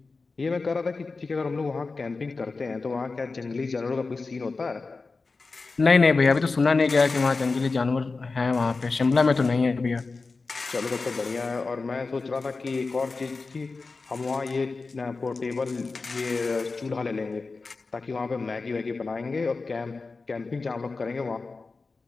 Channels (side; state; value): right; quieter; 4.0 dB